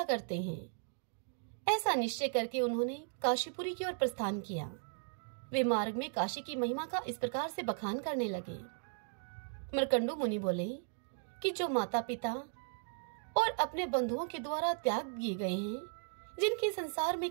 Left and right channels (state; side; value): silent; left; digital silence